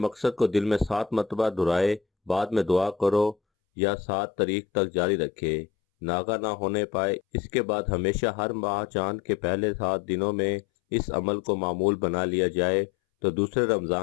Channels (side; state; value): right; drops out; at 3.4 s